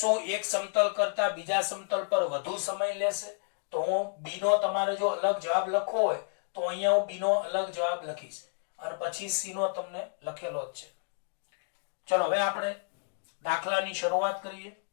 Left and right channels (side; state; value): right; silent; digital silence